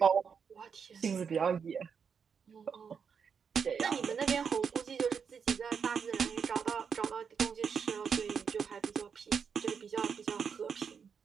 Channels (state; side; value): quieter; left; 6.5 dB